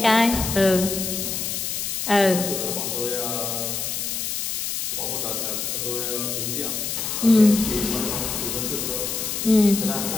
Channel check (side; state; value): left; noise; hiss, 3 dB below the sound